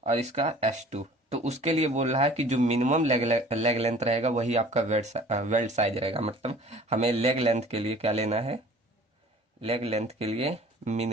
और इसका S2, तो उसके लिए बोल रहा है कि जो मिनिमम लेग लेंथ रहेगा वही आपका वेल्ड साइज रहेगा। मतलब हमें लेग लेंथ के लिए क्या लेना है? लेग लेंथ के लिए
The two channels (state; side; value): normal; both; correlation 0.48